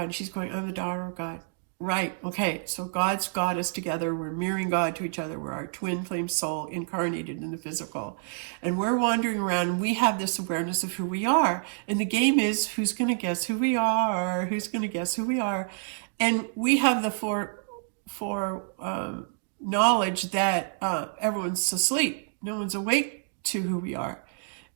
And she's going, I'm the daughter of God. Right, okay, so God's got us together. We're mirroring God to each other. We're our twin flame soul incarnated in the physical. And we're wandering around, and we have this awareness of who we are. And the game is, who's going to guess who we are? Who's going to guess who we are? And we have the knowledge that everyone's asleep. No one's awake to who we are.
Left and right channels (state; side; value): silent; left; digital silence